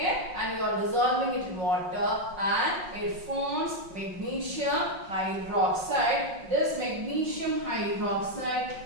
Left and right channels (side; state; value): left; late; 5.5 ms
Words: and you are dissolving it in water and it forms magnesium hydroxide. This magnesium